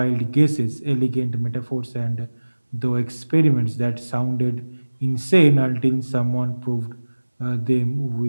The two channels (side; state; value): both; inverted; correlation -1.00